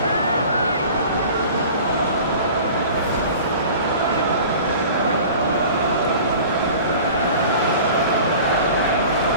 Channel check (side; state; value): both; inverted; correlation -0.42